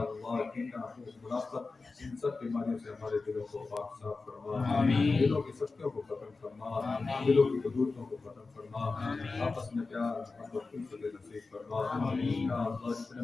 کینہ منافقت ان سب بیماریوں سے ہمارے دلوں کو پاک صاف فرما، دلوں کی سختیوں کو ختم فرما، دلوں کی قدورتوں کو ختم فرما، آپس میں پیار محبت الفت نصیب فرما، یا اللہ جتنے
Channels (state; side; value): quieter; right; 4.0 dB